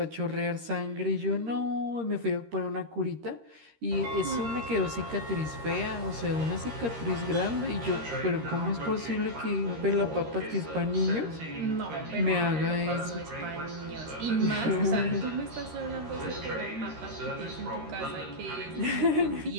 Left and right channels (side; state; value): left; late; 13 ms